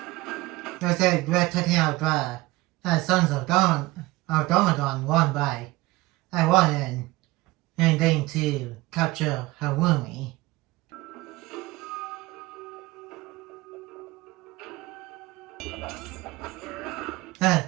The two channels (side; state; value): left; quieter; 20.1 dB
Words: I said we're taking out the Sons of Domagon one by one and then to capture Harumi.